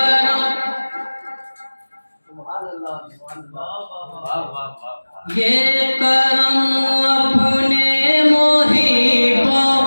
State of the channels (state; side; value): inverted; both; correlation -1.00